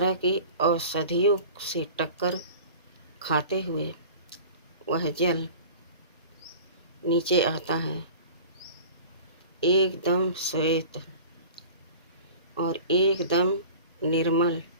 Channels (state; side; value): inverted; both; correlation -0.40